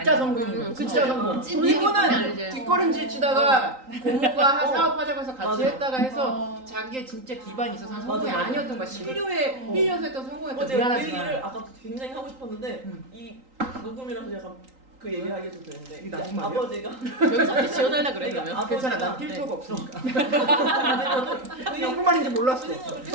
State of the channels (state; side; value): late; left; 3.8 ms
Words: 성공이에요. 그쵸. 진짜 성공. 찐 이분은 아니지. 뒷걸음질 치다가 고모가 사업하자고 해서 같이 맞아요. 했다가 해서 자기의 진짜 기반이 있어서 한 성공이 맞아요. 아니었던 거야. 필요에 힐려서 했던 성공이었던 제가 그 미안하지만. 얘기를 아까 굉장히 하고 싶었는데 이 녹음이라서 약간 그 얘기 하기도 되는데 이게 나쁜 말이야? 아버지가 여기서 지어달라 그래 그러면. 아버지가- 괜찮아, 난 필터가 없으니까. 그 무슨 말인지 몰랐어. 그 생각을